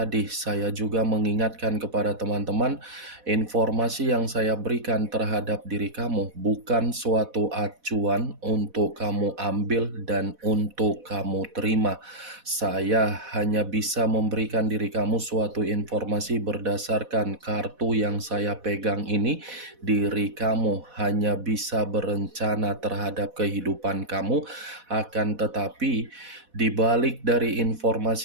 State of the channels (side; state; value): left; late; 4.1 ms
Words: saya juga mengingatkan kepada teman-teman, informasi yang saya berikan terhadap diri kamu bukan suatu acuan untuk kamu ambil dan untuk kamu terima. Saya hanya bisa memberikan diri kamu suatu informasi berdasarkan kartu yang saya pegang ini. Diri kamu hanya bisa berencana terhadap kehidupan kamu, akan tetapi di balik dari